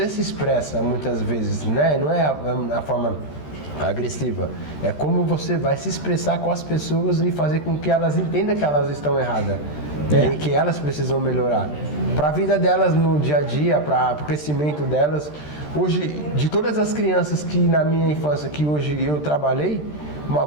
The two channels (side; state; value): right; late; 13 ms